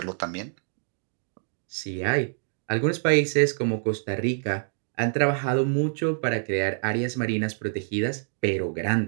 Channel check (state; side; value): silent; left; digital silence